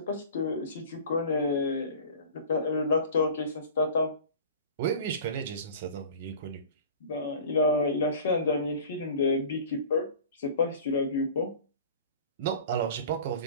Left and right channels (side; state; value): both; inverted; correlation -0.40